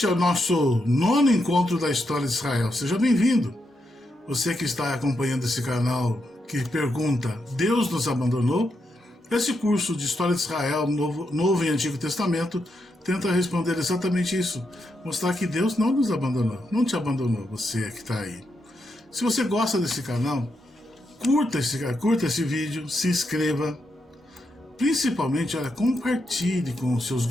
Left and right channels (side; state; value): both; normal; correlation 0.83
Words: é o nosso nono encontro da história de Israel. Seja bem-vindo. Você que está acompanhando esse canal que pergunta: Deus nos abandonou? Esse curso de História de Israel, Novo e Antigo Testamento, tenta responder exatamente isso. Mostrar que Deus não nos abandonou, não te abandonou, você que está aí. Se você gosta desse canal, curta esse vídeo, se inscreva. Principalmente, compartilhe com os seus